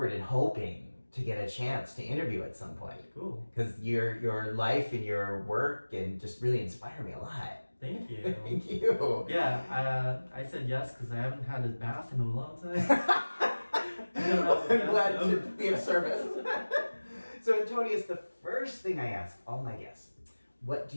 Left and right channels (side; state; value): both; inverted; correlation -1.00